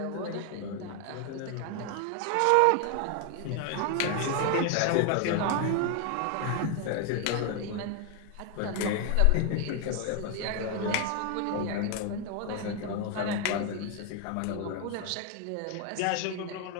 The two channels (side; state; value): both; different; correlation 0.01